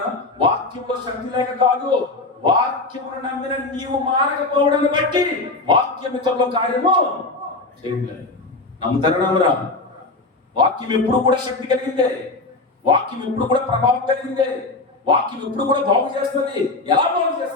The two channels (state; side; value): quieter; right; 3.3 dB